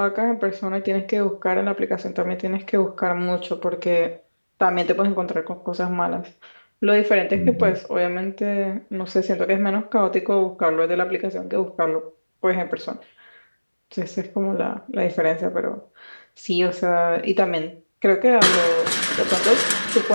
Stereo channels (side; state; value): both; inverted; correlation -1.00